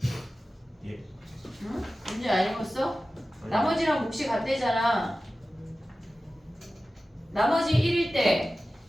예. 응? 문제 안 읽었어? 나머지랑 몫이 같대잖아. 나머지 1일 때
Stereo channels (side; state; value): both; normal; correlation 0.95